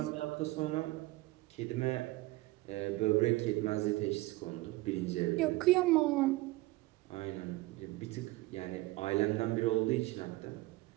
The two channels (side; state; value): left; quieter; 20.0 dB